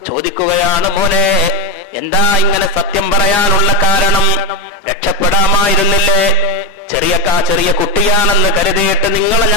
ചോദിക്കുകയാണ്, മോനെ എന്താ ഇങ്ങനെ സത്യം പറയാനുള്ള കാരണം? രക്ഷപ്പെടാമായിരുന്നില്ലേ? ചെറിയ കുട്ടിയാണെന്ന് കരുതിയിട്ട് നിങ്ങളെ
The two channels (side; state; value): both; normal; correlation 0.12